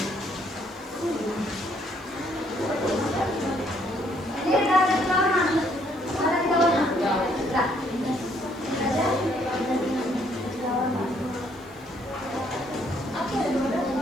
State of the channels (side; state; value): right; noise; hiss, 27 dB below the sound